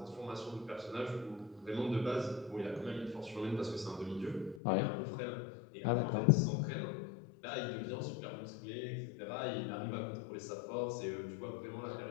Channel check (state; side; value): drops out; right; at 4.6 s